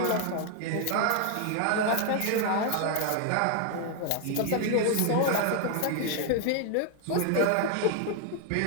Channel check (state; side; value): different; both; correlation 0.00